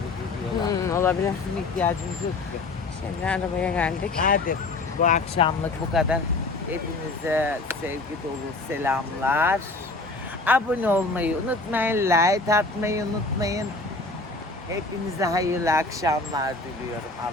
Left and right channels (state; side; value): quieter; right; 3.3 dB